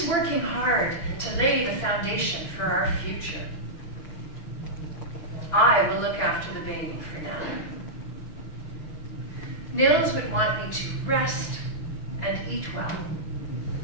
working hard to lay the foundation for our future. I will look after the baby for now. Nils would want me to rest and eat well,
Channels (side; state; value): right; late; 6.0 ms